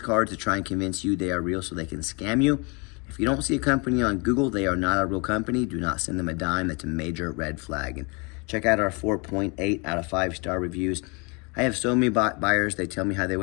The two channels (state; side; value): quieter; right; 31.0 dB